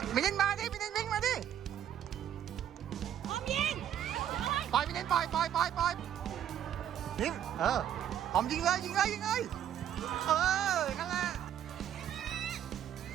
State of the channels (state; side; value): quieter; left; 10.2 dB